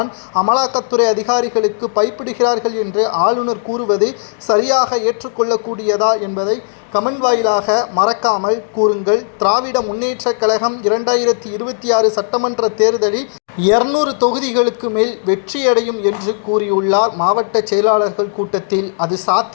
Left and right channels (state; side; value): silent; right; digital silence